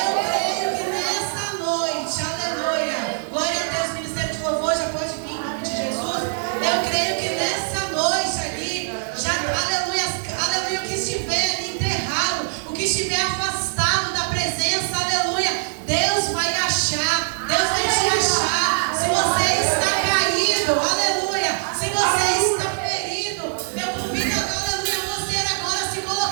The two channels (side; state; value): left; silent; 64 dB below the other